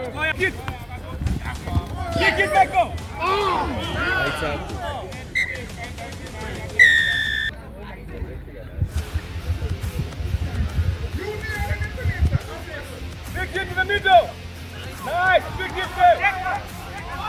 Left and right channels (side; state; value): both; identical; correlation 1.00